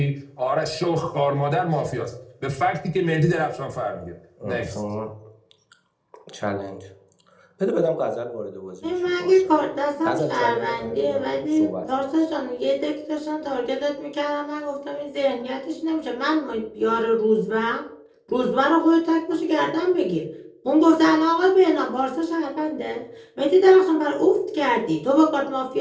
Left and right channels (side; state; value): both; identical; correlation 1.00